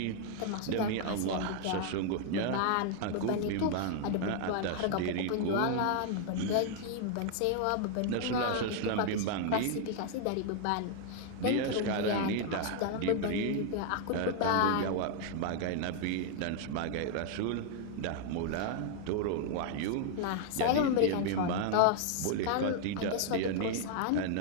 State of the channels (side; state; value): both; different; correlation 0.00